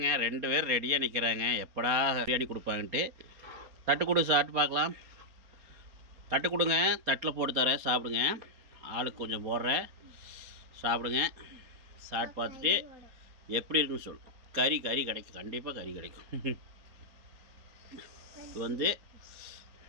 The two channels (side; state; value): left; late; 4.2 ms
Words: 2 பேர் ரெடியாக நிற்கிறாங்க, எப்படா பிரியாணி கொடுப்பாங்கன்ட்டு. தட்டு கொடு, சாப்பிட்டு பார்க்கலாம். தட்டு கொடுங்க, தட்டில் போட்டு தரேன், சாப்பிடுங்க. ஆளுக்கு கொஞ்சம் போடுறேன், சாப்பிடுங்க. சாப்பிட்டு பார்த்துட்டு எப்படி இருக்குன்னு சொல்லு. கறி கிடைக்கும், கண்டிப்பாக கறி கிடைக்கும். இது வந்து